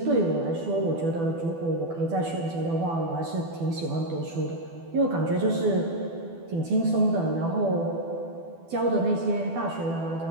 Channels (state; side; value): late; left; 12 ms